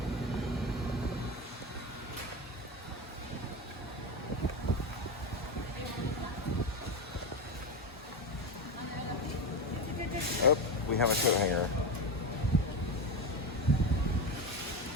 Oh, we have a coat hanger.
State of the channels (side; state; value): both; normal; correlation 0.17